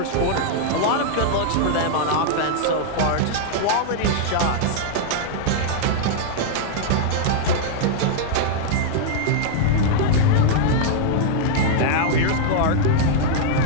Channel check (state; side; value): different; both; correlation -0.01